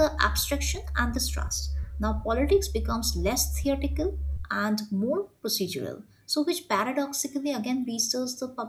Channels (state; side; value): identical; both; correlation 1.00